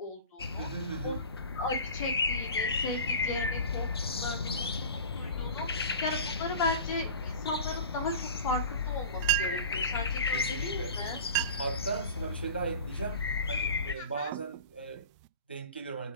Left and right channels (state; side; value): inverted; both; correlation -0.37